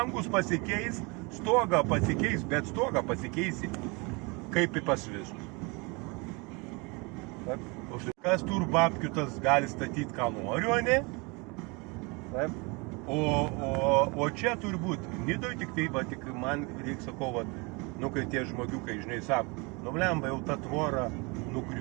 pasikeis, stogą pasikeis, bet stogą pasikeisi kaip į pas visus. Kas tur babkių tas gali statyti, ką nori, o ne? Taip. O čia turbūt, Nidoj tik tai, tik man reikia sakau, nu kai tie žmogiukai, žinai, sako, nu blemba, jau ta tvora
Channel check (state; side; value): quieter; left; 28.7 dB